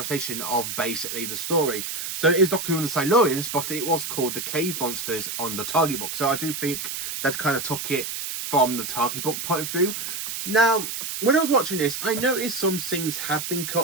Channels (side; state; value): right; noise; hiss, 5 dB below the sound